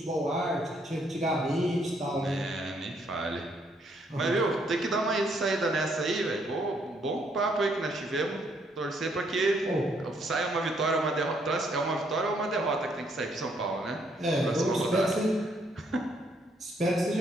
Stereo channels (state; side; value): normal; both; correlation 0.70